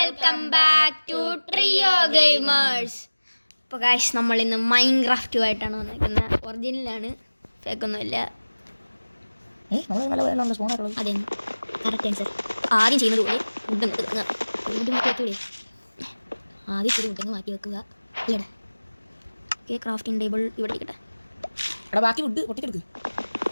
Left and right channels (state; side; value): inverted; both; correlation -1.00